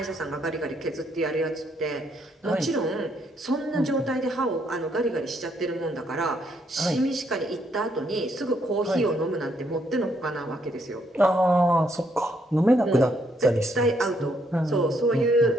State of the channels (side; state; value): both; normal; correlation 0.72